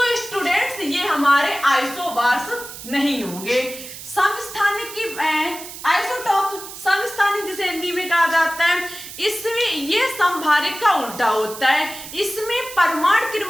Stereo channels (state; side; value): noise; right; hiss, 12 dB below the sound